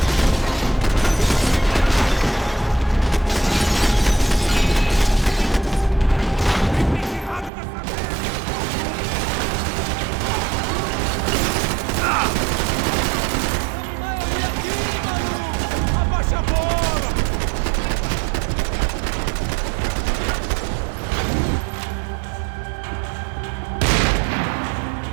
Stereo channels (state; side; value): drops out; left; at 7.5 s